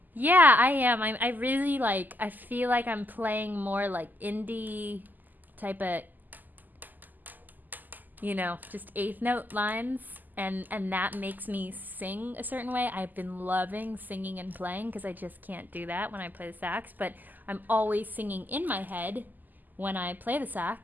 Yeah, I am. I really I feel like I'm playing more like indie type of, just 8th note lines. And that makes me sing a certain way. I've been loving singing and playing because I just can't do that when I play the sax. But I'm always singing in my head when I play the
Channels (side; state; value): left; late; 0.085 ms